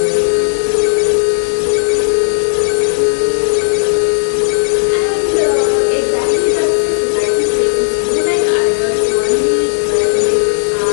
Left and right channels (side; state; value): right; silent; digital silence